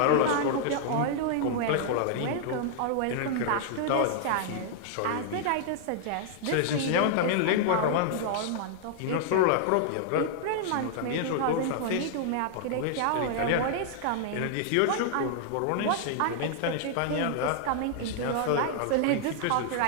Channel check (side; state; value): both; different; correlation -0.01